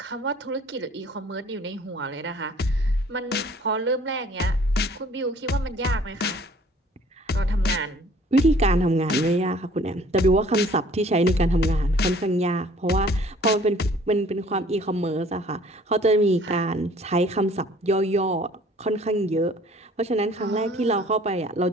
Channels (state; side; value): normal; both; correlation 0.54